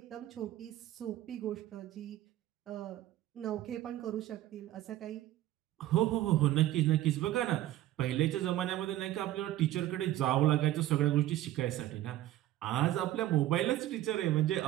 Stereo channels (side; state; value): left; quieter; 14.2 dB